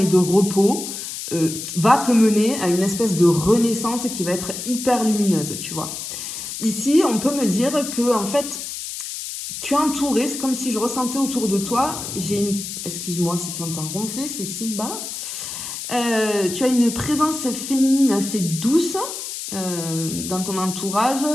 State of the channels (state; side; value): noise; left; hiss, 7 dB below the sound